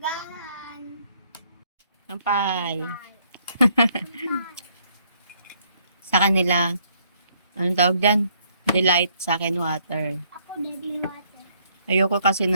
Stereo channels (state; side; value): inverted; both; correlation -0.68